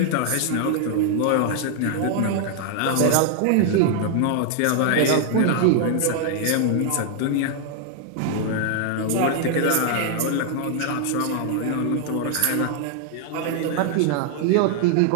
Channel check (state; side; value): different; both; correlation 0.00